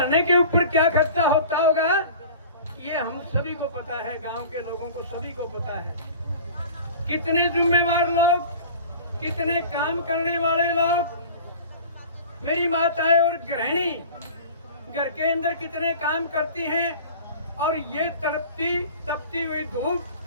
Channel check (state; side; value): inverted; both; correlation -0.41